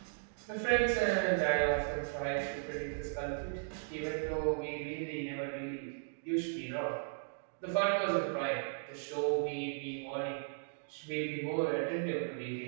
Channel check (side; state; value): left; silent; digital silence